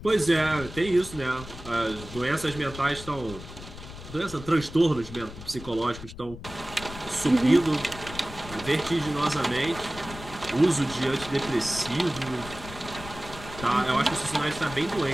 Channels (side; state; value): left; noise; rumble, 13 dB below the sound